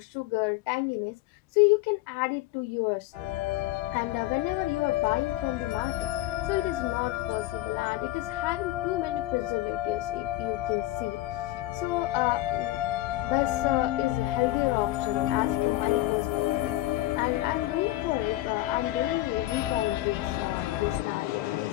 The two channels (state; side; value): quieter; right; 16.3 dB